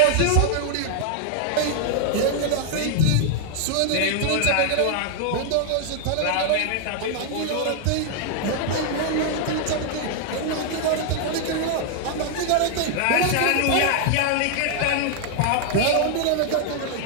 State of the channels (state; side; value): different; both; correlation 0.00